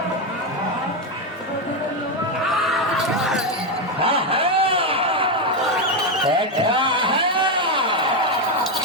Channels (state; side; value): normal; both; correlation 0.07